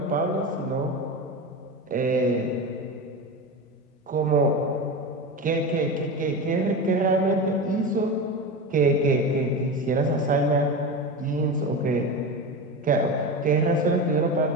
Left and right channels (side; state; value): both; normal; correlation 0.23